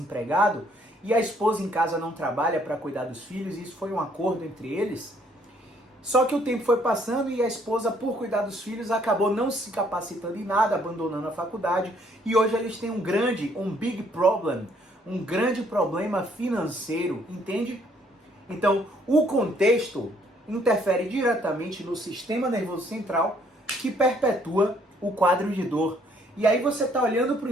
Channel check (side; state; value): both; normal; correlation 0.65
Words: e a esposa em casa não trabalha para cuidar dos filhos, e isso foi um acordo entre eles. Só que o tempo foi passando e a esposa, por cuidar dos filhos, acabou não se capacitando em nada, abandonando a faculdade, e hoje eles têm um big problem, um grande problema financeiro, entende? Então, o contexto interfere diretamente no sistema nervoso central, que perpetua o quadro de dor. E aí você está olhando para o